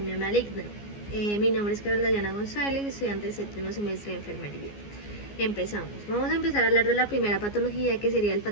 maligna. Mi nombre es Carla Dayana González, estudiante de séptimo semestre de enfermería. Empezamos. Vamos a empezar a hablar de la primera patología que sería el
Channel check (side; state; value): right; late; 14 ms